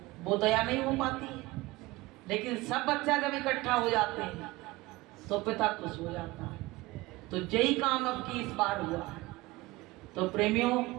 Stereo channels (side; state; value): left; quieter; 20.6 dB